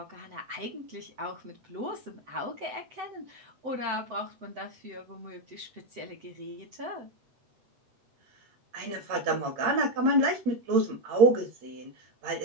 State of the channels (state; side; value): late; left; 7.9 ms